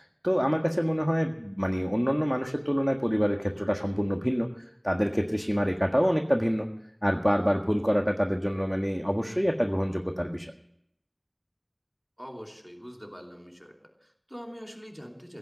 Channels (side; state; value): both; identical; correlation 1.00